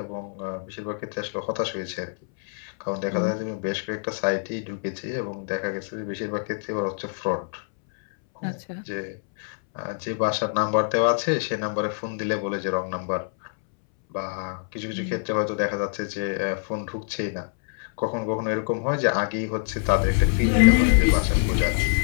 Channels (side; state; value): right; silent; 61 dB below the other